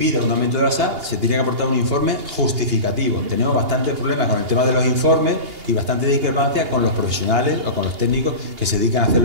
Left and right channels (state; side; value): late; left; 2.8 ms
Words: un aumento de la SAC, se tiene que aportar un informe justificativo. Tenemos bastantes problemas con el tema de los informes y bastante discrepancia con los profesionales o con los técnicos que se dedican a hacer